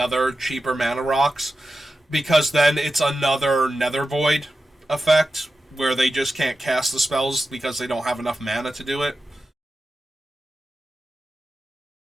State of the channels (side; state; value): both; normal; correlation 0.92